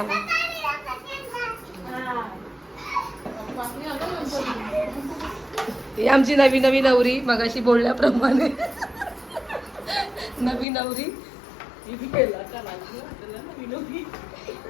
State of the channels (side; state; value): right; drops out; at 10.7 s